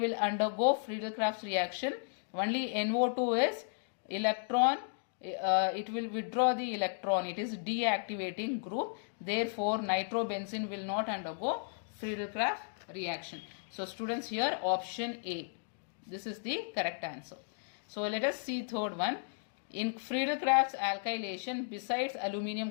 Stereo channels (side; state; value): right; silent; digital silence